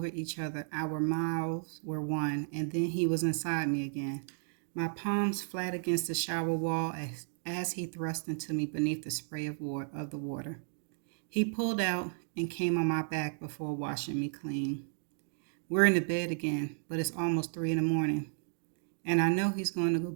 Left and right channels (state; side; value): silent; left; digital silence